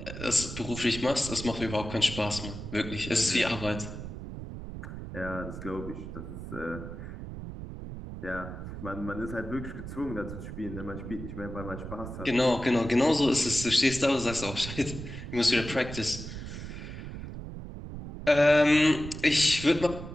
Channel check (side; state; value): right; noise; rumble, 9 dB below the sound